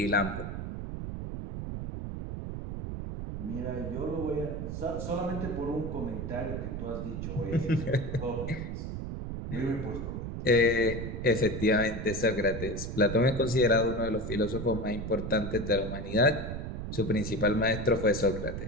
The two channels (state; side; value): noise; right; rumble, 5 dB below the sound